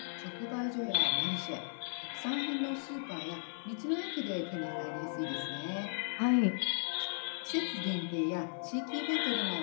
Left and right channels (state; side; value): silent; right; digital silence